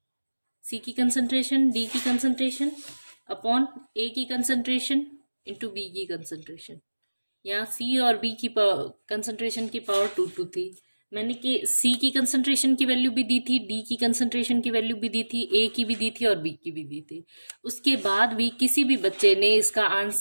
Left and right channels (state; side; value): inverted; both; correlation -1.00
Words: सी की कंसंट्रेशन, डी की कंसंट्रेशन अपॉन ए की कंसंट्रेशन इंटू बी की कंसंट्रेशन। यहाँ सी और बी की कंसंट्रेशन की पावर 2 थी। मैंने के सी की कंसंट्रेशन की वैल्यू भी दी थी, डी की कंसंट्रेशन की वैल्यू भी दी थी, ए की भी दी थी और बी की भी दी थी। उसके बाद भी किसी भी बच्चे ने इसका